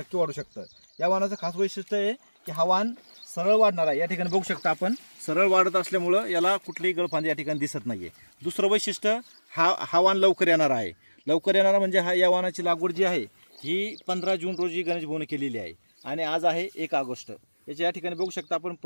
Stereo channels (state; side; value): inverted; both; correlation -1.00